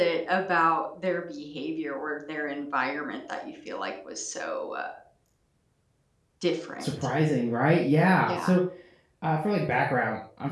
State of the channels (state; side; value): identical; both; correlation 1.00